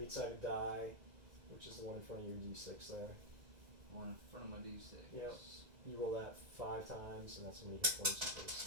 die, which is the one in front of your d6 there. One in front of my D6. Yep. You roll that 5 times, and that's how many hit points you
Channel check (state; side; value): late; left; 2.0 ms